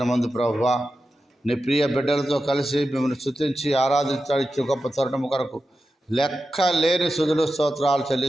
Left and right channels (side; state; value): both; normal; correlation 0.91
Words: ప్రభువా నీ ప్రియ బిడ్డలతో కలిసి మిమ్మల్ని స్తుతించి ఆరాధించడానికి గొప్ప తరుణము కొరకు లెక్క లేని స్తుతులు స్తోత్రాలు